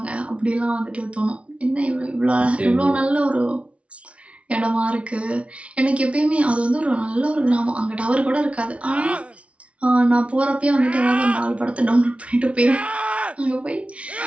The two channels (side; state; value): left; late; 0.062 ms